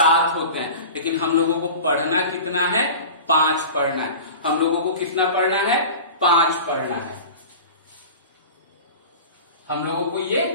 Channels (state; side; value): inverted; both; correlation -0.35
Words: होते हैं। लेकिन हम लोगों को पढ़ना कितना है? 5 पढ़ना है। हम लोगों को कितना पढ़ना है? 5 पढ़ना है। हम लोगों को ये